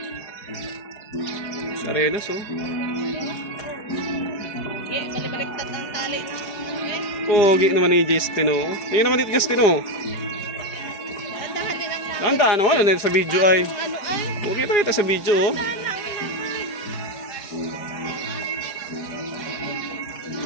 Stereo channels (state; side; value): late; right; 4.8 ms